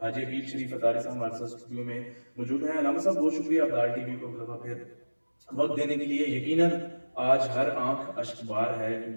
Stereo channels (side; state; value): both; inverted; correlation -1.00